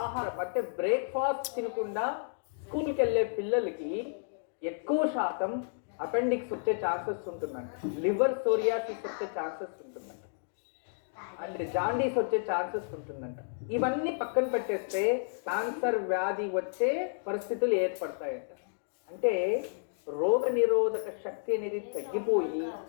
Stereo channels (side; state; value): right; silent; digital silence